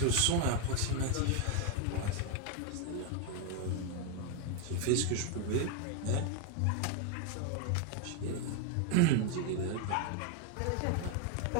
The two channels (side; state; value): both; different; correlation 0.01